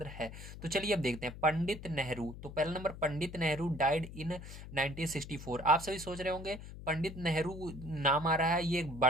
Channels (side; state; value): left; noise; hum, 12 dB below the sound